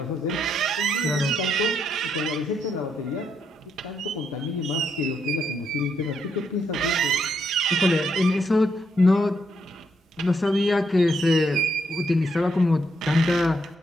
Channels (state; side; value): normal; both; correlation 0.77